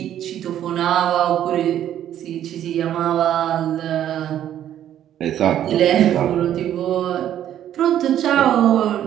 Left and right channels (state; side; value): quieter; left; 11.1 dB